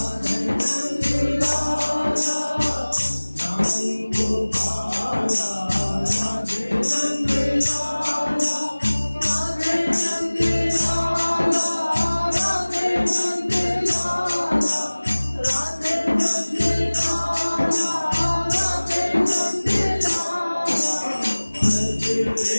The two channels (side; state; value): both; inverted; correlation -1.00